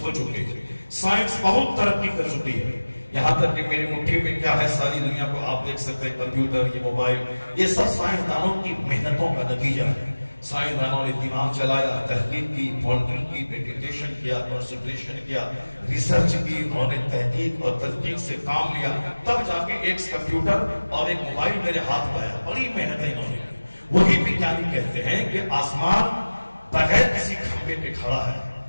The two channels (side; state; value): both; inverted; correlation -1.00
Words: ہو چکے ہیں، سائنس بہت ترقی کر چکی ہے، یہاں تک کہ میری مٹھی میں کیا ہے ساری دنیا کو آپ دیکھ سکتے ہیں، کمپیوٹر، یہ موبائل، یہ سب سائنسدانوں کی محنتوں کا نتیجہ ہے۔ سائنسدانوں نے دماغ چلایا، تحقیق کی، پونڈنگ کی، میڈیٹیشن کیا، کنسنٹریشن کیا، ریسرچ کی، انہوں نے تحقیق اور تدقیق سے کام لیا، تب جا کے ایک کمپیوٹر اور ایک موبائل میرے ہاتھ میں آیا۔ بڑی محنتیں انہوں نے کی۔ وہی وگیانی کہتے ہیں کہ آسمان بغیر کسی کھمبے پہ کھڑا ہے،